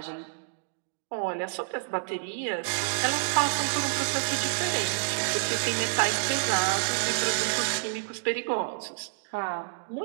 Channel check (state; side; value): silent; left; digital silence